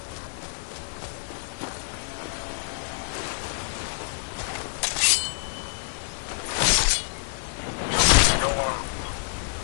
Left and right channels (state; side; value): silent; right; digital silence